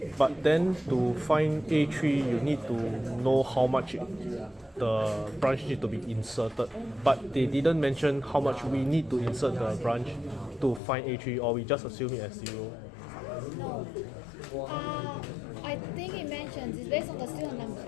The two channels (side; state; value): right; drops out; at 10.8 s